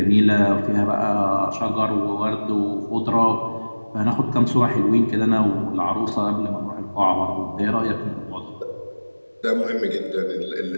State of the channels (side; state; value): both; inverted; correlation -1.00